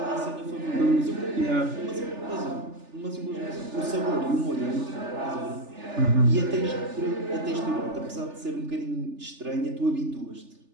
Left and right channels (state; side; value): late; left; 3.4 ms